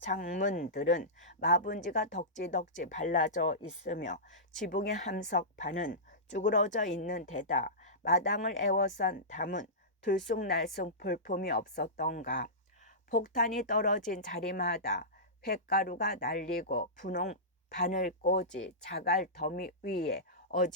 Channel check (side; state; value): both; normal; correlation -0.17